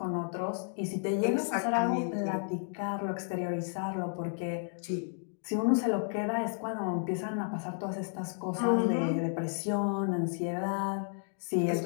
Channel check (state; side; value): silent; right; 56 dB below the other